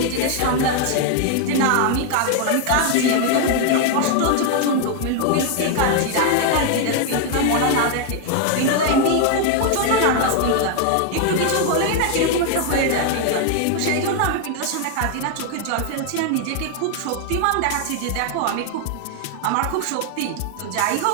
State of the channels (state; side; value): different; both; correlation 0.00